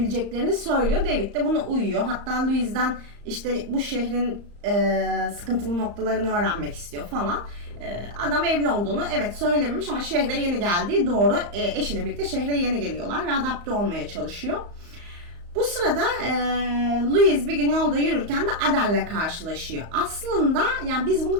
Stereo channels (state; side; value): late; left; 35 ms